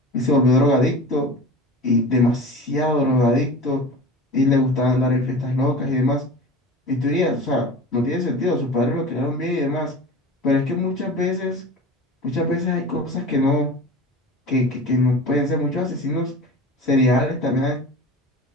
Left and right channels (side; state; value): both; normal; correlation 0.34